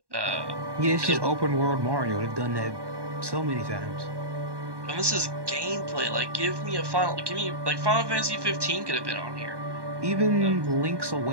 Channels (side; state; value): left; late; 1.1 ms